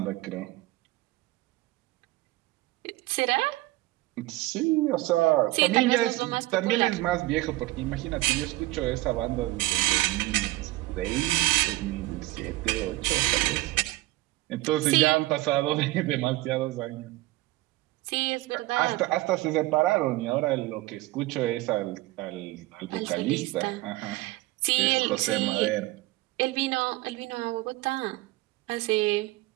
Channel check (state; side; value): quieter; left; 18.8 dB